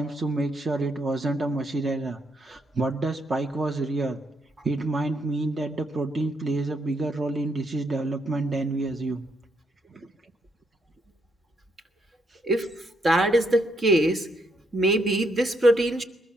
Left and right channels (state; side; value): normal; both; correlation 0.75